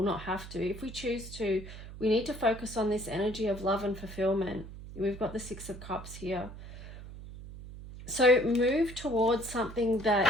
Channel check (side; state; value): right; noise; hum, 13 dB below the sound